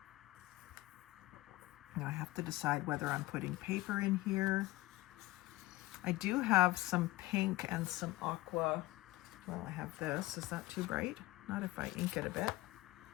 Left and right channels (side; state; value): right; quieter; 18.7 dB